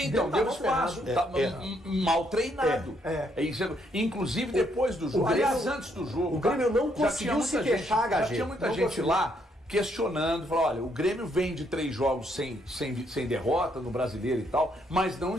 Então, deu Tava espaço. ferrado. Mal treinado. Isso. Inclusive depois do jogo. Grêmio- Aliás, antes do jogo. o Grêmio não já conseguiu tinha muita se gente- queixar, Já HG. tinha muita Não gente conseguiu. lá questionando, falou, olha, o Grêmio vem de 3 jogos sem derrota no Brasileiro e tal, mas não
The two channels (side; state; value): both; normal; correlation 0.72